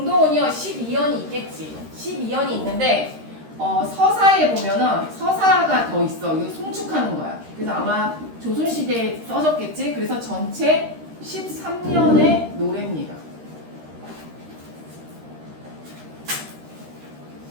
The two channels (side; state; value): left; late; 13 ms